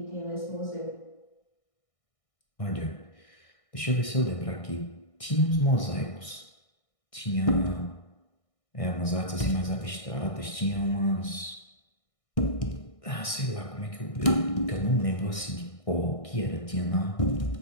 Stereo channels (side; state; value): right; late; 1.6 ms